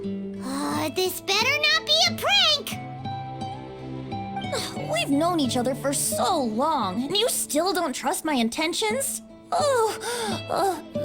This better not be a prank! We've known each other for so long, and you still don't trust my intentions?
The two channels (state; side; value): identical; both; correlation 1.00